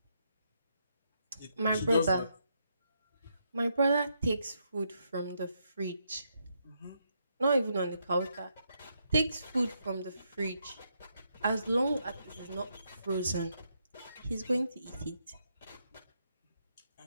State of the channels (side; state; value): both; inverted; correlation -0.78